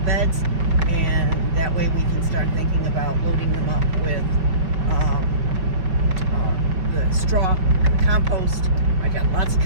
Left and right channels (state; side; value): late; left; 5.4 ms